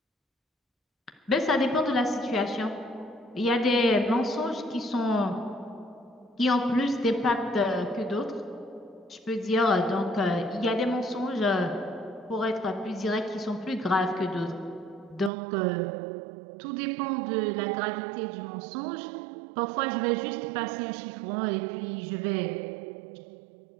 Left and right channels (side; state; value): left; drops out; at 15.3 s